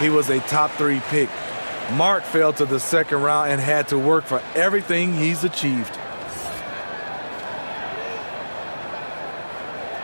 was a top 3 pick. Mark fell to the second round and had to work for everything he's achieved.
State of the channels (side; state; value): both; inverted; correlation -1.00